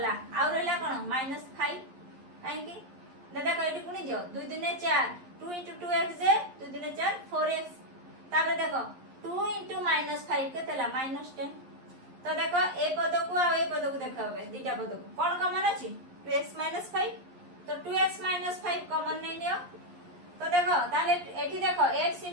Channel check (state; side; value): late; left; 11 ms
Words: और रहला कोन -5 काहे की देखो एटी पुनी जो 2 दुने 4 2 into 2x जे 2 दुने 4 4x ताबे देखो 2 into -5 केतेला -10 तो देखो ए पद को आ ए पद को देखाबे दीटा पद को कोन कॉमन अछि 2x - 5 तो 2x - 5 कॉमन नहीं लियो तो देखो ताले एठी देखो x